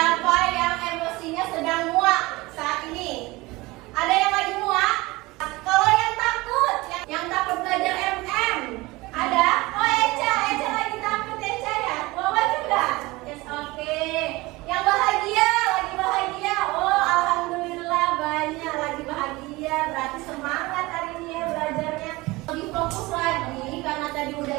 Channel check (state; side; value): quieter; left; 21.5 dB